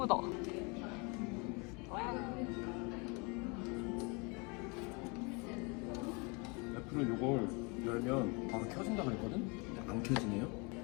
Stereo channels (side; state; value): right; quieter; 29.6 dB